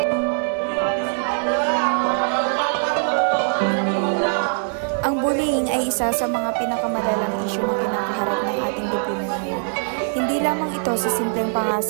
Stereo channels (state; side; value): silent; left; digital silence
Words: Ang bullying ay isa sa mga pinakamalalang isyu na kinakaharap ng ating lipunan ngayon. Hindi lamang ito sa simpleng